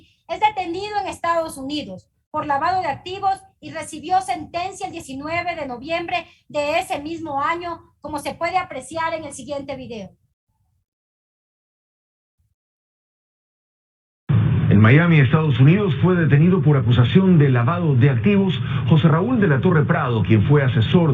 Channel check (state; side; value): identical; both; correlation 1.00